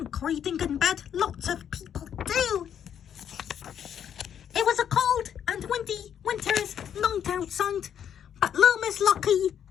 reading in bed? Lots of people do. It was a cold and windy winter's night outside, but little Miss Lucky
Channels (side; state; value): right; quieter; 9.0 dB